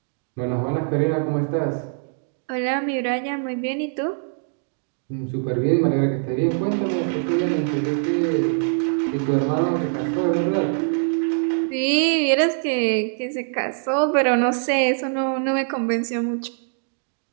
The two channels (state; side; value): silent; left; digital silence